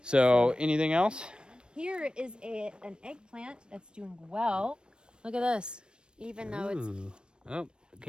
So, anything else? Here is an eggplant that's doing well. Look at this. Even though it's Ooh. Oh, it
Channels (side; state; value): left; late; 0.053 ms